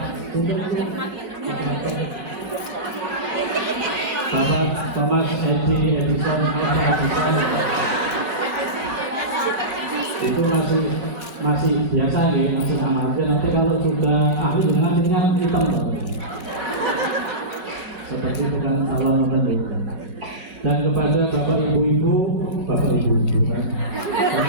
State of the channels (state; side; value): late; left; 5.4 ms